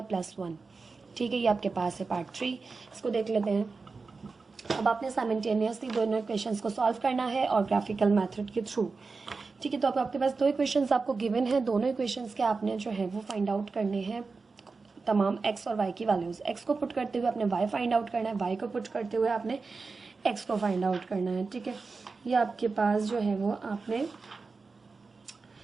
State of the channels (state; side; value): quieter; left; 4.3 dB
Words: plus 1। ठीक है, ये आपके पास है पार्ट 3। इसको देख लेते हैं। अब आपने साइमल्टेनियसली दोनों इक्वेशंस को सॉल्व करना है और ग्राफिकल मेथड के थ्रू। ठीक है, तो अब आपके पास दो इक्वेशंस आपको गिवन है। दोनों इक्वेशंस के आपने जो है वो फाइंड आउट करने हैं तमाम x और y की वैल्यूज। x को पुट करते हुए आपने y फाइंड आउट करना है, y को पुट करते हुए आपने x को फाइंड आउट करना है। ठीक है, ये आपके पास जो है वो आपने